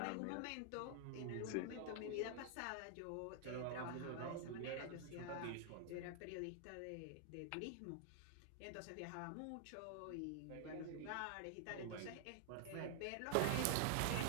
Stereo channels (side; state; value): both; different; correlation 0.00